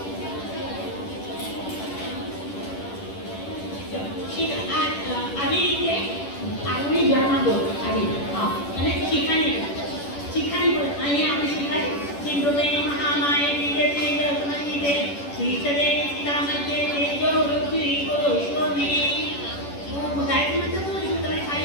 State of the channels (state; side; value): late; right; 10 ms